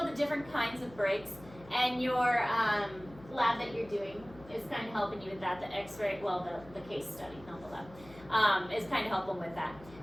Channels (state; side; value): noise; left; hum, 20 dB below the sound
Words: the different kinds of breaks, and your lab that you're doing is kind of helping you with that. The x-ray, well, the case study, not the lab, is kind of helping with that.